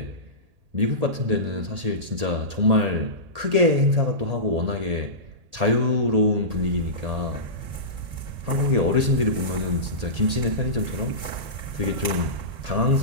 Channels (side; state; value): left; late; 1.8 ms